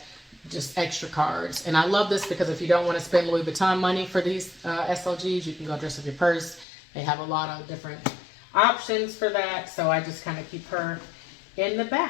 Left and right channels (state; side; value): drops out; right; at 6.7 s